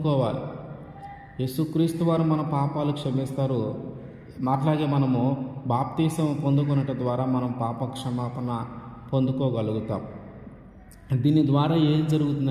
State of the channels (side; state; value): both; identical; correlation 1.00